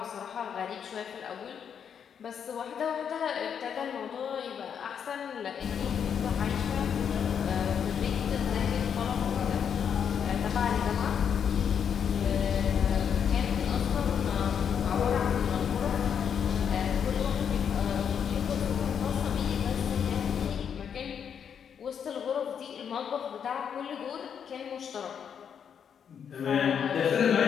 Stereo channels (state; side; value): quieter; right; 7.7 dB